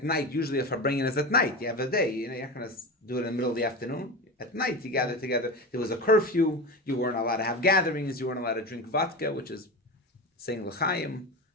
night, usually if Farbrengen is at night, you have a day, you're not going to do it in the middle of the afternoon. At night, you gather together. There was a curfew. You weren't allowed to have gatherings. You weren't allowed to drink vodka, which is saying l'chaim.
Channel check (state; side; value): normal; both; correlation 0.25